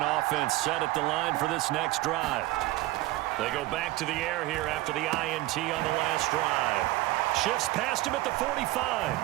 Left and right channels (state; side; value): quieter; left; 17.9 dB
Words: offense set at the line for this next drive. They go back to the air here after the INT on the last drive. Shifts past him at the 45.